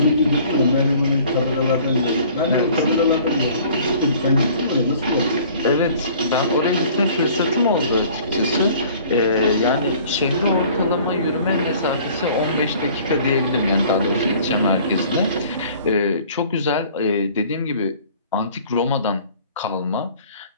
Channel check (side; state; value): both; inverted; correlation -0.51